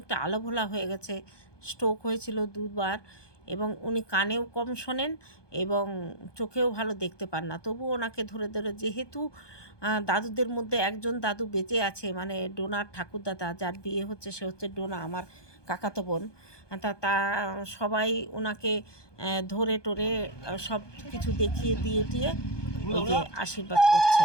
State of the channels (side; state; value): right; late; 1.2 ms